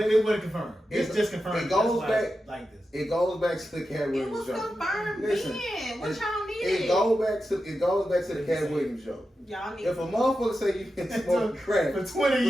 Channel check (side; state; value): both; normal; correlation 0.90